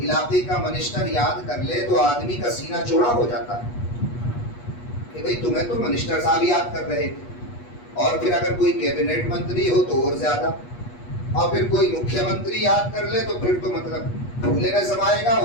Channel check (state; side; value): late; right; 8.3 ms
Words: کا منسٹر یاد کر لے تو آدمی کا سینہ چوڑا ہو جاتا ہے کہ بھئی تمہیں تو منسٹر صاحب یاد کر رہے تھے, اور پھر اگر کوئی کیبنٹ منتری ہو تو اور زیادہ, اور پھر کوئی مکھیہ منتری یاد کر لے تو پھر تو مطلب بھولے نہ سمائے گا,